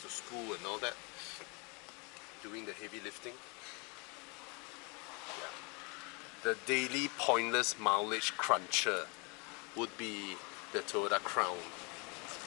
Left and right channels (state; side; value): quieter; right; 31.1 dB